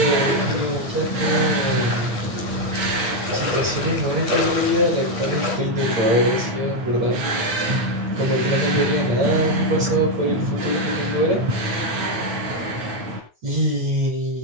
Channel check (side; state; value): left; late; 9.0 ms